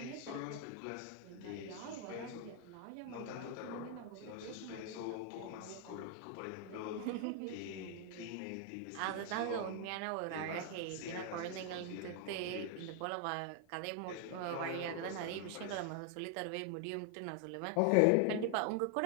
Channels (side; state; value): both; different; correlation 0.00